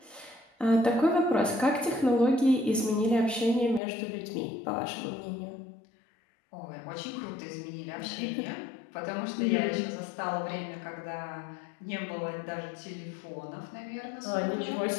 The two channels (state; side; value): drops out; right; at 3.8 s